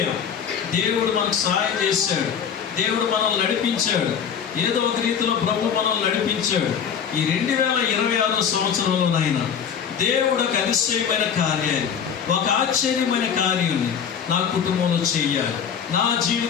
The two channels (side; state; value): right; quieter; 7.6 dB